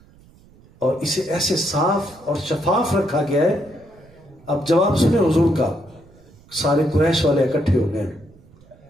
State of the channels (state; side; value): noise; right; rumble, 27 dB below the sound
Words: اور اسے ایسے صاف اور شفاف رکھا گیا ہے۔ اب جواب سنیں حضور کا، سارے قریش والے اکٹھے ہو گئے،